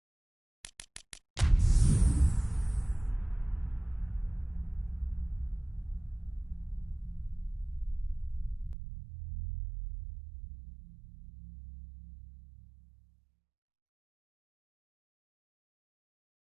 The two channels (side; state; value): left; drops out; at 8.8 s